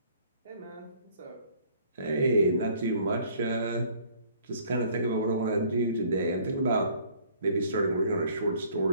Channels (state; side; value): inverted; both; correlation -0.57